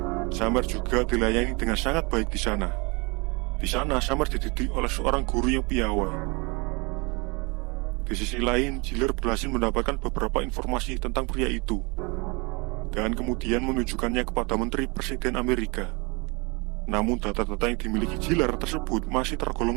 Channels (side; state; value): left; quieter; 28.9 dB